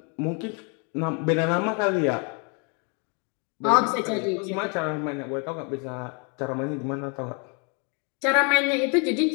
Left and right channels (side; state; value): right; quieter; 35.9 dB